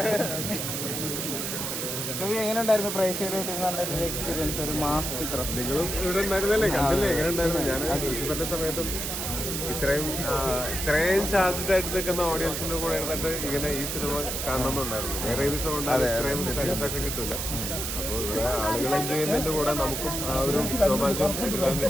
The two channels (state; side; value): noise; right; hiss, 3 dB below the sound